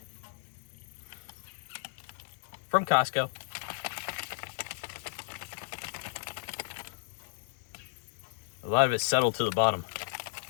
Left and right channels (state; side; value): silent; right; digital silence